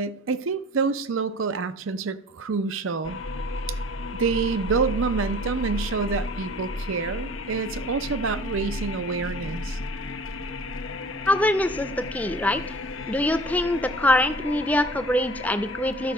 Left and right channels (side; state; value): both; normal; correlation 0.45